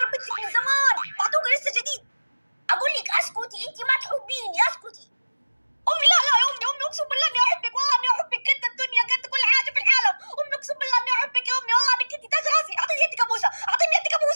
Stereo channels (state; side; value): inverted; both; correlation -1.00